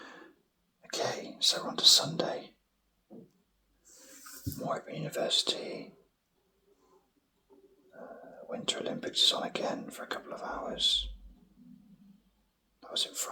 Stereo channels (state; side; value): identical; both; correlation 1.00